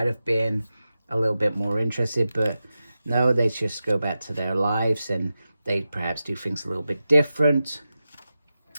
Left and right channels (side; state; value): both; inverted; correlation -0.92